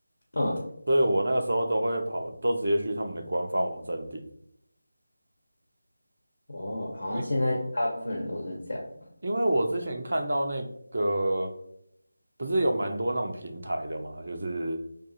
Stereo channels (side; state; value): both; inverted; correlation -0.95